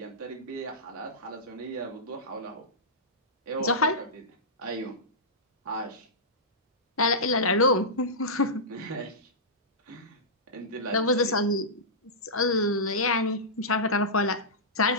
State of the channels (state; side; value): normal; both; correlation -0.15